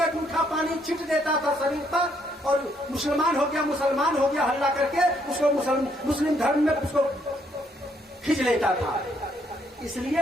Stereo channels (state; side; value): normal; both; correlation 0.71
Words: जूठा पानी छिट देता था शरीर पर और मुसलमान हो गया हल्ला करके उसको मुस्लिम धर्म में उसको खींच लेता था।